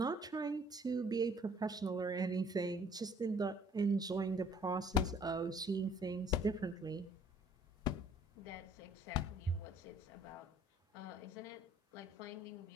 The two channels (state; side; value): normal; both; correlation 0.59